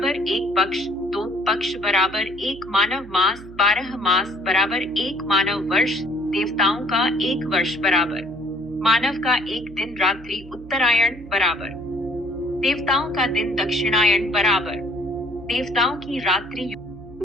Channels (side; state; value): right; noise; hum, 18 dB below the sound